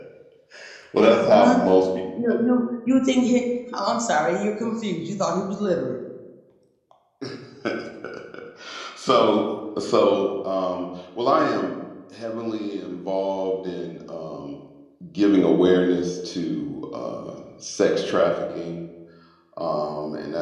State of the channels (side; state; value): both; identical; correlation 1.00